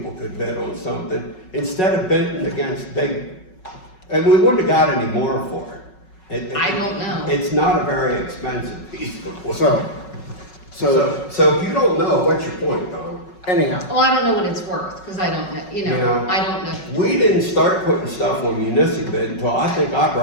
could bid on something, instead of bidding against big, and we wouldn't have got any more for it. I don't know. It's not a very expensive piece of equipment. So, if you don't know, what's your point, Don? anyhow, Well, I don't know what it's worth, because I don't know, You know, I don't know. We didn't start putting stuff on municipal bid until I think I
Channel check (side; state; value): right; late; 5.4 ms